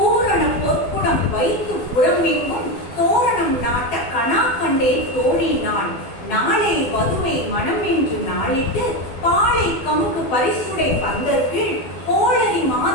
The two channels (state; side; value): late; right; 12 ms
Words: பொற்குடம் வைத்து புறமெங்கும் தோரணம் நாட்ட கணா கண்டே தோழினான். நாளை வதுவை மனம் என்று நாளிட்டு பாலை கமுகு பரிசுடை பந்தற்கீழ் கோளரி